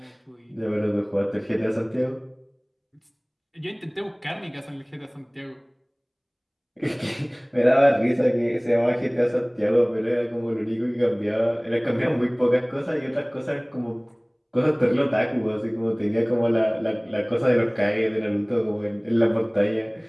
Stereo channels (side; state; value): both; identical; correlation 1.00